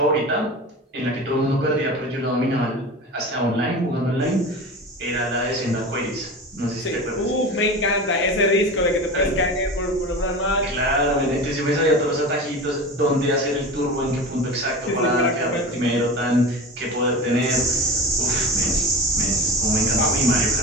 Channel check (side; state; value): both; normal; correlation 0.31